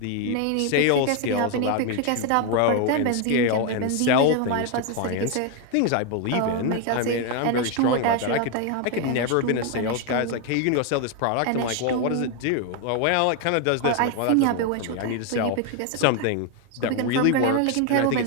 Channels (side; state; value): both; different; correlation 0.01